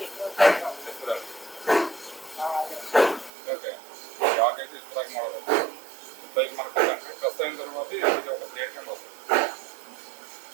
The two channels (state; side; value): drops out; left; at 3.3 s